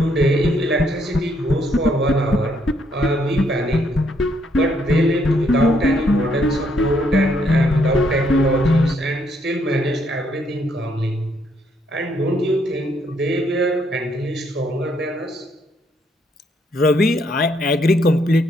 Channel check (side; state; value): both; normal; correlation 0.72